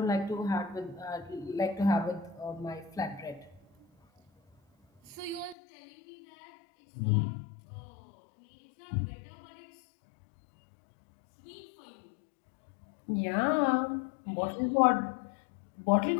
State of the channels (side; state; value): right; drops out; at 5.6 s